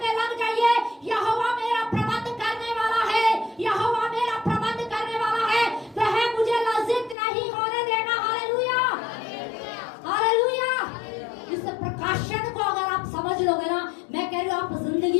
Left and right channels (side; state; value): right; drops out; at 7.2 s